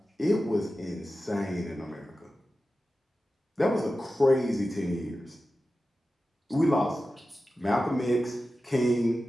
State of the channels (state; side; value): normal; both; correlation 0.93